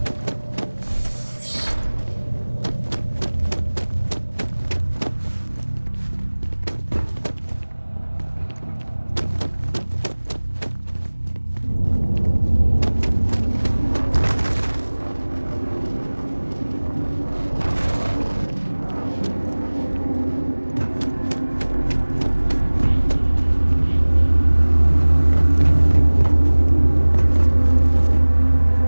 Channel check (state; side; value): inverted; both; correlation -1.00